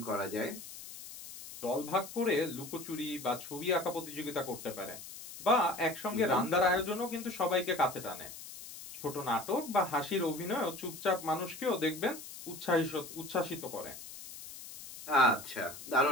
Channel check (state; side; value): noise; left; hiss, 13 dB below the sound